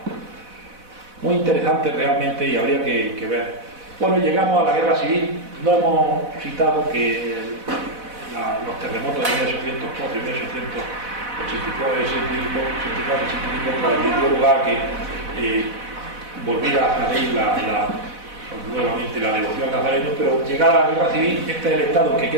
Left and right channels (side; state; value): left; late; 4.0 ms